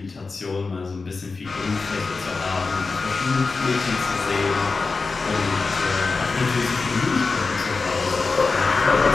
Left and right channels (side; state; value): right; quieter; 4.2 dB